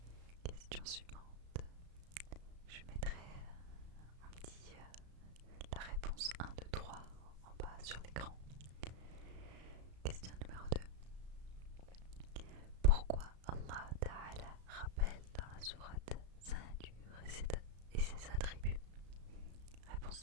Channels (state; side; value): late; left; 34 ms